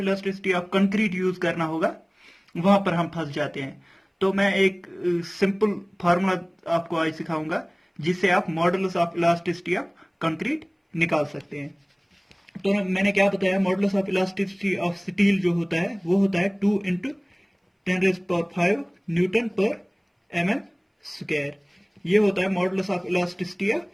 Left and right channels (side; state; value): both; identical; correlation 1.00